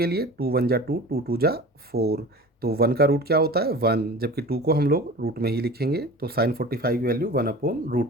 लिए 2 1 जा 2, 2 2 जा 4, तो 1 का रूट क्या होता है 1, जबकि 2 को हम लोग रूट में ही लिखेंगे, तो साइन 45 की वैल्यू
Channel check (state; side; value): normal; both; correlation 0.38